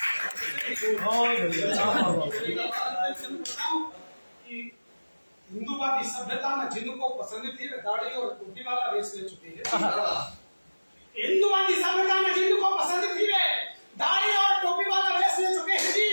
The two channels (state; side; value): inverted; both; correlation -1.00